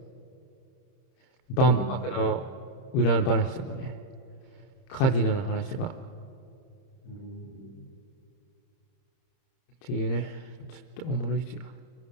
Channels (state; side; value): late; right; 30 ms